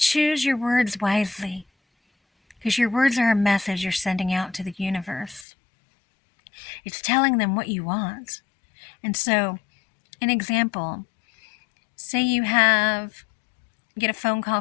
your words wisely, because your words are a message you're sending out to the universe. It's telling them what you want. And so, an example, say you get a phone call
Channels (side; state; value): right; drops out; at 5.5 s